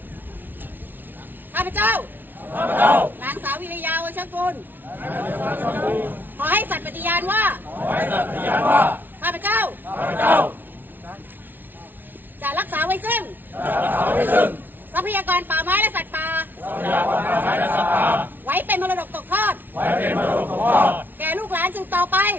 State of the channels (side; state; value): left; late; 0.091 ms